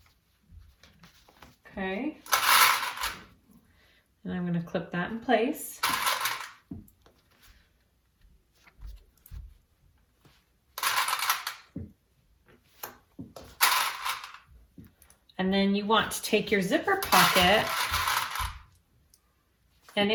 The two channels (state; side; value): identical; both; correlation 1.00